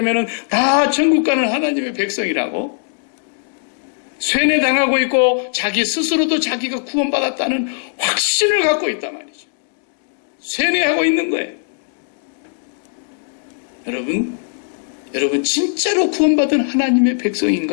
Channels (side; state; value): right; silent; digital silence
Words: 다 천국 가는 하나님의 백성이라고 세뇌당하고 있고 자기 스스로도 자기가 구원받았다는 확신을 갖고 있단 말이죠. 세뇌하고 있는 거예요. 여러분 진짜로 구원받은 하나님의